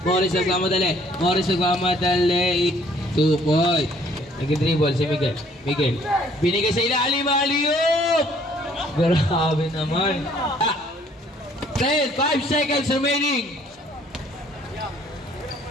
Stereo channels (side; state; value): both; normal; correlation 0.60